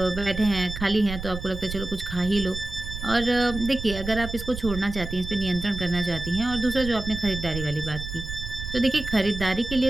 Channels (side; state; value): right; noise; rumble, 8 dB below the sound